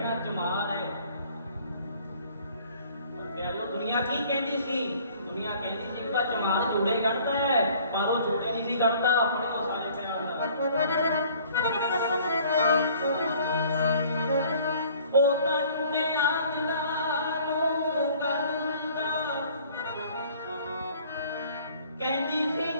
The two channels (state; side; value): inverted; both; correlation -0.54